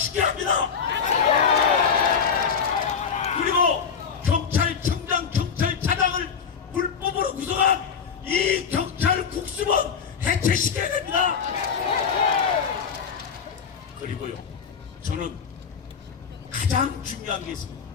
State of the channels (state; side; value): quieter; right; 6.5 dB